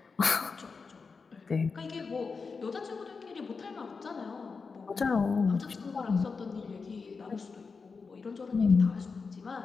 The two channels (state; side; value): quieter; right; 4.8 dB